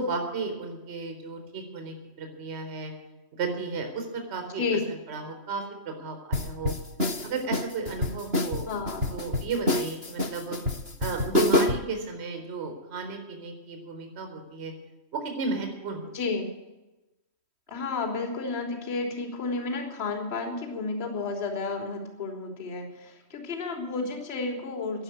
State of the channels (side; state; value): left; late; 2.9 ms